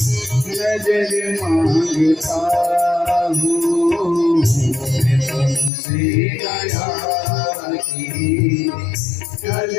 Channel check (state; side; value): drops out; right; at 5.7 s